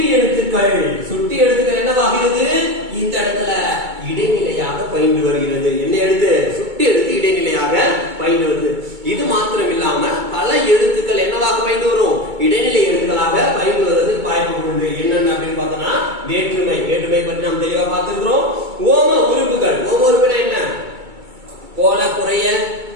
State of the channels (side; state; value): left; late; 2.2 ms